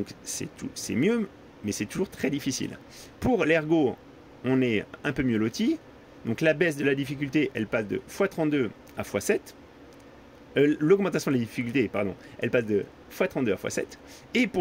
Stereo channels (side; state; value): both; identical; correlation 1.00